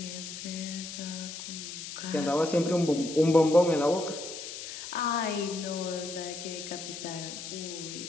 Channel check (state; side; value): noise; left; hiss, 9 dB below the sound